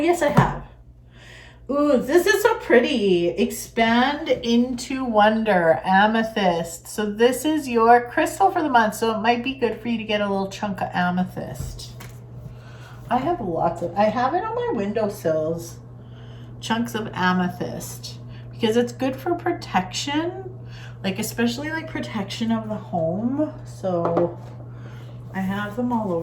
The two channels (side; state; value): both; identical; correlation 1.00